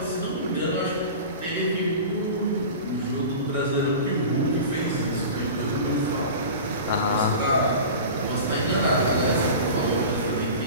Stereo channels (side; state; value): both; inverted; correlation -0.34